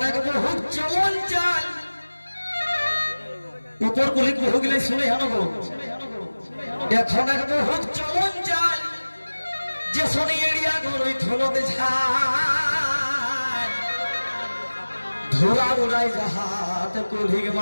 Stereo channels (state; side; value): inverted; both; correlation -1.00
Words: এক বহুত চলন চাল উপর কুলি বহু গিলে শুনে হানব এখন এক বহুত চলন চাল যে শনি এরিয়া গরই ধুলতে ঝাল ধুলা উড়াই জাহাত কুলির